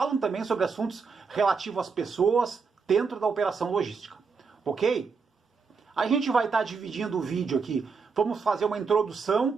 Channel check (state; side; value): quieter; left; 5.2 dB